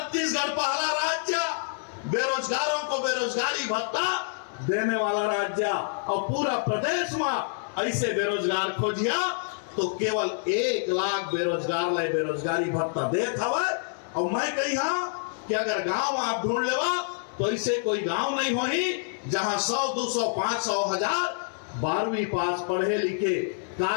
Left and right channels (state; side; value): silent; right; 60 dB below the other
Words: पहला राज्य बेरोजगारों को बेरोजगारी भत्ता देने वाला राज्य और पूरा प्रदेश में ऐसे बेरोजगार खोजिया तो केवल 1 लाख बेरोजगार लाए बेरोजगारी भत्ता देत हवाए। और मैं कही हाँ कि अगर गांव आप ढूंढ लेवा तो ऐसे कोई गांव नहीं होही जहां 100, 200, 500, 1000 12वीं पास पढ़े लिखे